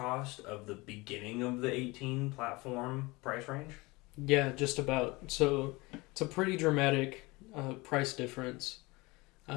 of the beginning of the 18 platform price range. Yeah, just about. So it's a pretty dramatic price difference.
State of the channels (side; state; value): right; quieter; 23.6 dB